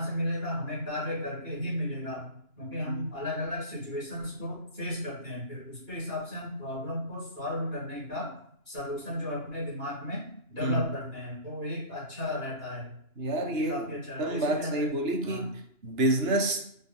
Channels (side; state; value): left; late; 2.9 ms